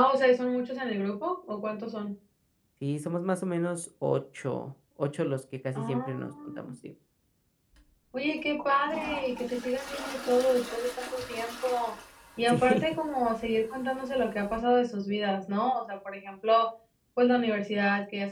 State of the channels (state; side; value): identical; both; correlation 1.00